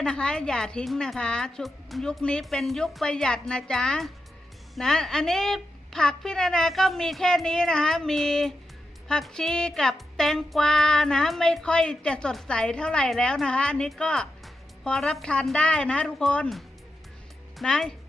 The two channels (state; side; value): normal; both; correlation 0.87